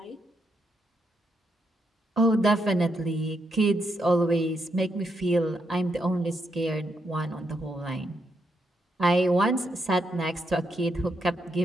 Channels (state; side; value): normal; both; correlation 0.80